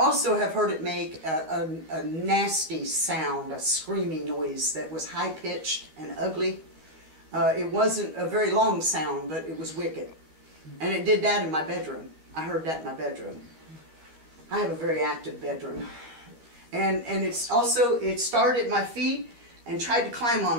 have heard it make a nasty sound, a screaming noise that was high-pitched and ugly. It wasn't a very long sound, but it was wicked. And it did that in my bedroom. I heard that in my bedroom. I have a very active bedroom. And it started at my feet and tried to climb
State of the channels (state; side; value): late; left; 13 ms